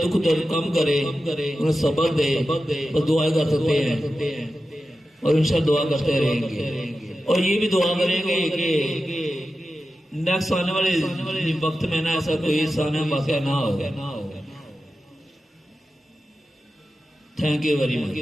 دکھ درد کم کرے انہیں صبر دے اور دعائیں کر سکتے ہیں اور انشاءاللہ دعا کرتے رہیں گے اور یہ بھی دعا کریں گے کہ نیکسٹ آنے والے وقت میں نا ایسا کوئی سانیہ واقعہ نہ ہوگا. Thank you very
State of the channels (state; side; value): normal; both; correlation 0.92